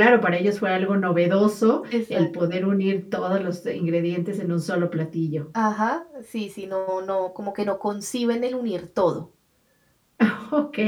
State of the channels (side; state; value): both; identical; correlation 1.00